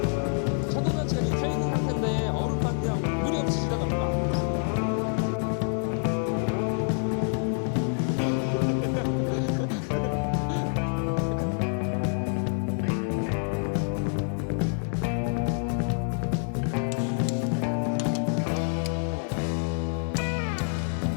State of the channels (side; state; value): right; silent; 55 dB below the other